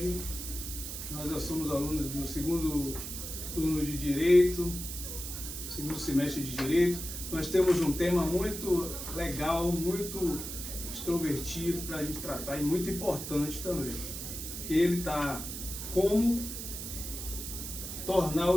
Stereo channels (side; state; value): right; noise; hiss, 7 dB below the sound